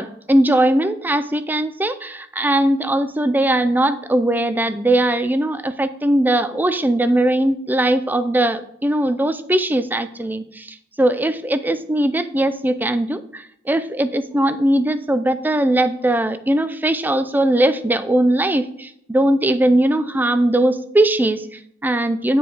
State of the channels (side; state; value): both; normal; correlation 0.82